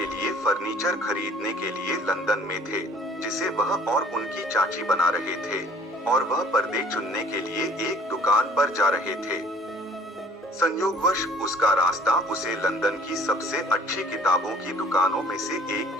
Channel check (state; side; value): normal; both; correlation 0.53